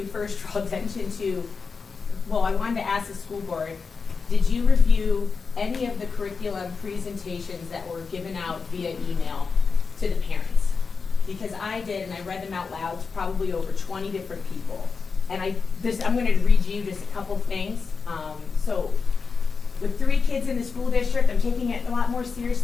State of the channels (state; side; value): quieter; right; 5.0 dB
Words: first draw attention to, well, I wanted to ask the school board, did you review any of the curriculum presentations that were given out via email to the parents? Because I did, and I read them out loud to probably over 20 different people. And I'm going to read you just a couple things. So with 3 kids in the school district, I'm taking it a lot more